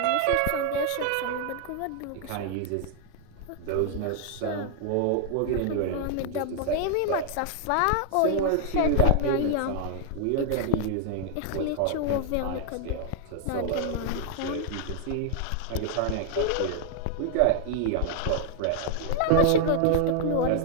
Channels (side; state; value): both; different; correlation 0.00